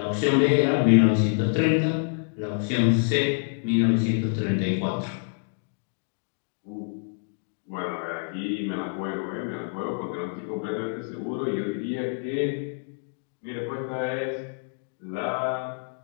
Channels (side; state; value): right; silent; 60 dB below the other